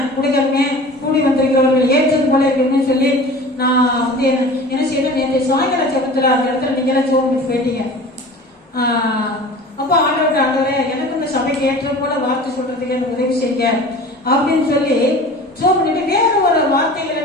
கொடுக்கறமே கூடி வந்திருக்கிறவர்கள் ஏற்றது போல இருக்குன்னு சொல்லி நான் என்ன செய்யணும், நேற்று சாயங்கால ஜெபத்துல அந்த இடத்துல நீங்க எல்லாம் ஜெபம் பண்ணி போயிட்டீங்க. அப்ப ஆண்டவரே எனக்கு இந்த சபைக்கு ஏற்ற போல வார்த்தை சொல்றதுக்கு எனக்கு உதவி செய்யுங்க அப்படின்னு சொல்லி ஜெபம் பண்ணிட்டு வேற ஒரு வார்த்தைகளை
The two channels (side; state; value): both; normal; correlation 0.40